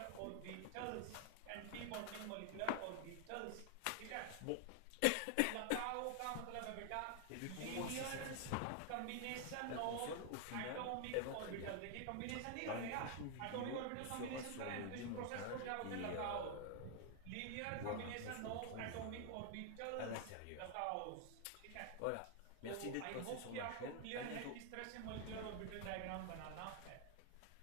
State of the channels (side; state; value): both; different; correlation 0.00